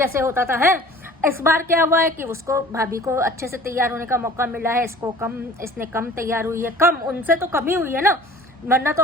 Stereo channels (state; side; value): normal; both; correlation 0.46